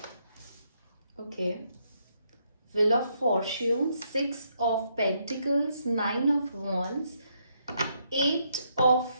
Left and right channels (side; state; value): both; inverted; correlation -0.75